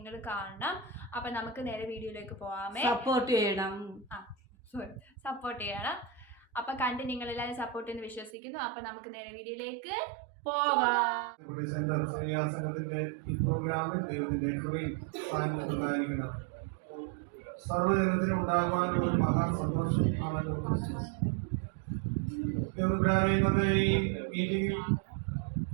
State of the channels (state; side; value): drops out; left; at 8.3 s